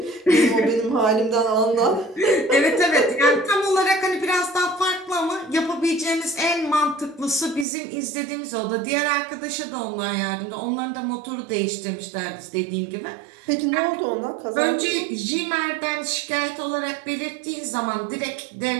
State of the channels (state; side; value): drops out; left; at 7.7 s